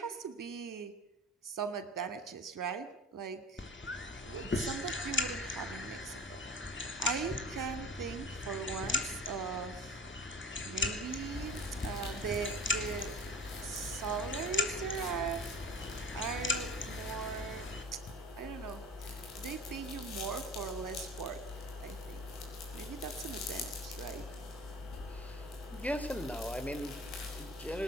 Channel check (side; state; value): both; normal; correlation 0.41